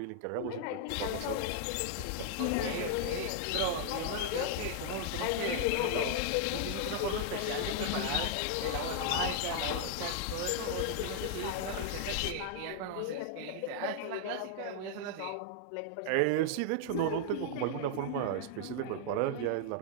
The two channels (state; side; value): different; both; correlation -0.01